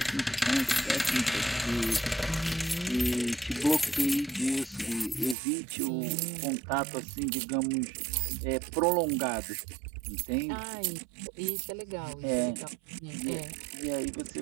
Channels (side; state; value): left; drops out; at 5.4 s